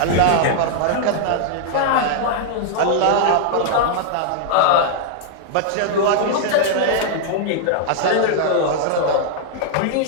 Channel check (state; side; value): different; both; correlation -0.01